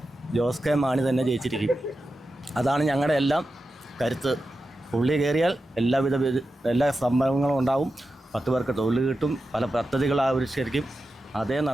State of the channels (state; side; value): normal; both; correlation 0.91